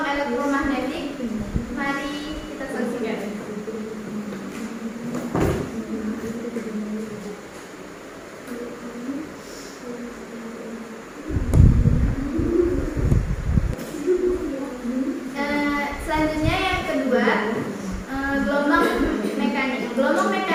elektromagnetik. Mari kita saksikan.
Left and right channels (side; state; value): both; identical; correlation 1.00